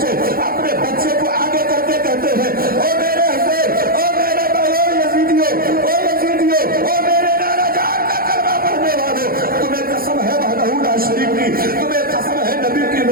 अपने बच्चे को आगे करके कहते हैं ओ मेरे हुसैन, ओ मेरे भाइयों यजीदियों, ओ यजीदियों, ओ मेरे नाना जान का कलमा पढ़ने वालों, तुम्हें कसम है वहदहू ला शरीक की, तुम्हें कसम है नबी की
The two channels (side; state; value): left; late; 0.43 ms